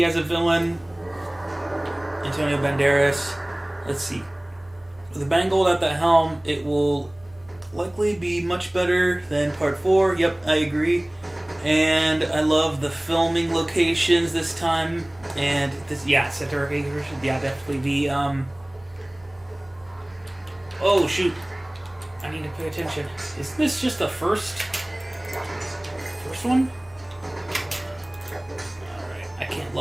as a villain. Antonio Banderas. Let's see. With Mangold at the helm, it will likely be much better than Part 4. Yep, I agree. And I love the filming locations this time. And this, yeah, Center yeah, definitely the, Oh, shoot. I need to pay attention. Is this just the first one? Alright, I can't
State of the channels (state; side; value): noise; right; hum, 28 dB below the sound